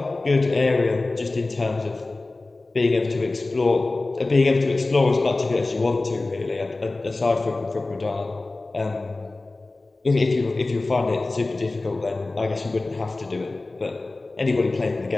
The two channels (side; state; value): right; quieter; 3.2 dB